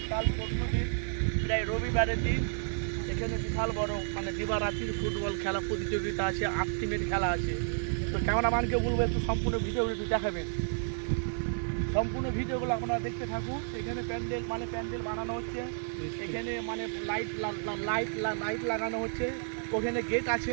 পরশু দিন প্রায় রবিবারের দিন এখানে বিশাল বড় দিবারাত্রির ফুটবল খেলা প্রতিযোগিতা আছে। 8 টিমের খেলা আছে। তো ক্যামেরাম্যানকে বলবো একটু সম্পূর্ণ ভিডিওগুলো একটু দেখাবেন। সম্পূর্ণ ভিডিওগুলো আপনারা দেখতে থাকুন। এখানে প্যান্ডেল বানানো হচ্ছে। এখানে লাইট লাগানো হচ্ছে। ওখানে গেট আছে।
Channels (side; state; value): left; silent; 57 dB below the other